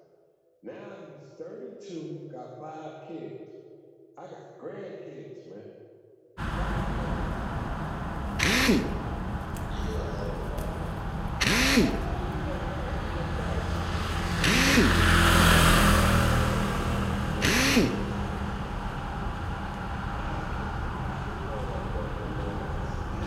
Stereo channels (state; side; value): identical; both; correlation 1.00